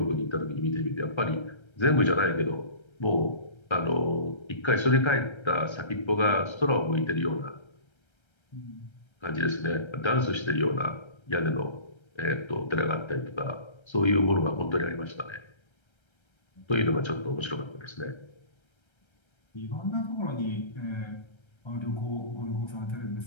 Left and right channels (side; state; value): right; late; 1.3 ms